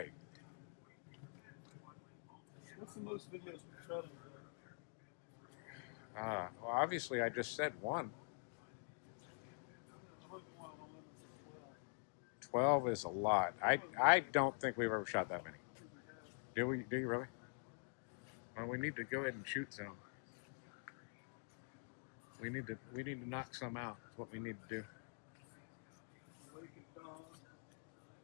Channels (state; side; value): silent; right; digital silence